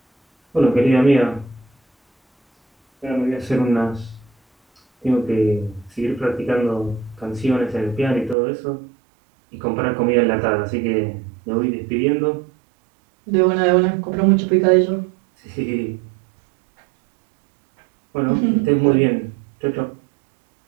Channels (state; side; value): drops out; left; at 8.3 s